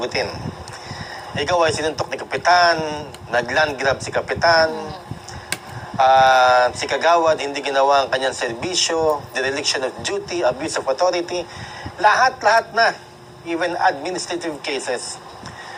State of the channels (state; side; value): identical; both; correlation 1.00